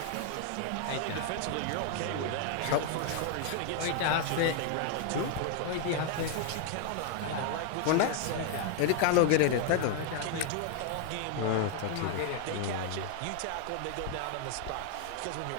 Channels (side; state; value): both; different; correlation 0.00